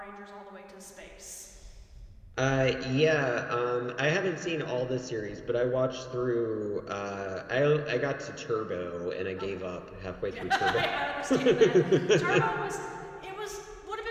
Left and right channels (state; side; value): identical; both; correlation 1.00